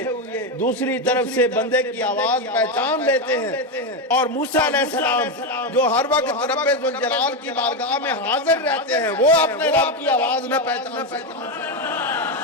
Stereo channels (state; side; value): normal; both; correlation 0.10